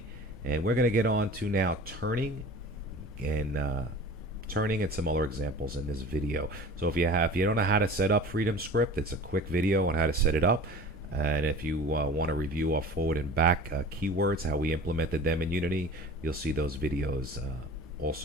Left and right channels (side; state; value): both; normal; correlation 0.41